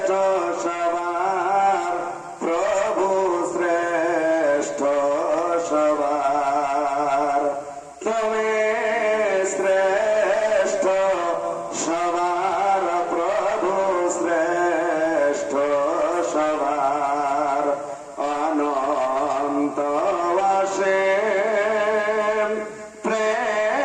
সবার প্রভু শ্রেষ্ঠ সবার তুমি শ্রেষ্ঠ সবার প্রভু শ্রেষ্ঠ সবার অনন্ত অসীম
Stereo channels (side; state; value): both; identical; correlation 1.00